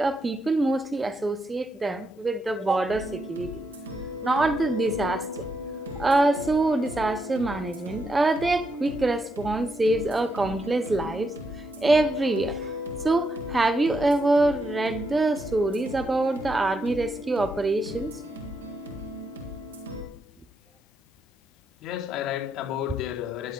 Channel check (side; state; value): both; normal; correlation 0.81